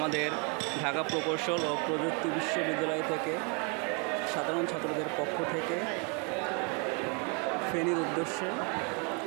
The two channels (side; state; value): left; quieter; 33.1 dB